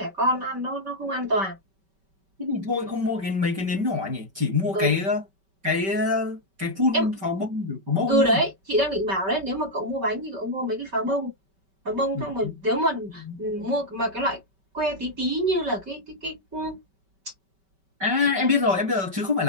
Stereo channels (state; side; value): late; left; 5.2 ms